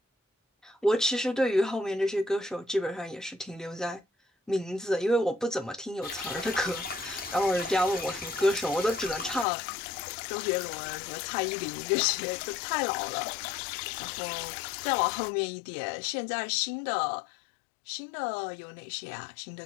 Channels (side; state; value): right; drops out; at 9.5 s